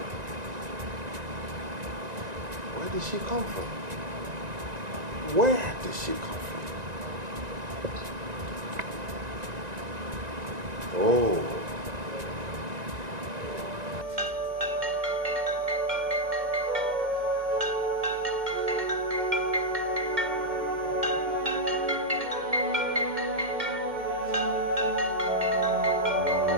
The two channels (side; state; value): left; late; 1.9 ms